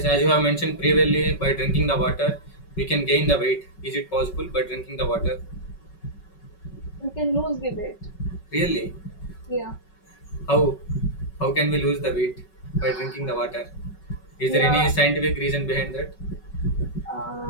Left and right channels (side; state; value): right; late; 5.3 ms